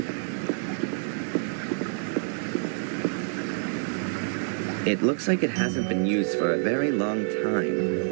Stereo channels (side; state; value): left; silent; 60 dB below the other